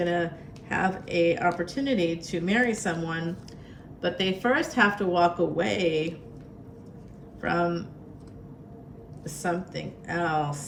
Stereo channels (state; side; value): identical; both; correlation 1.00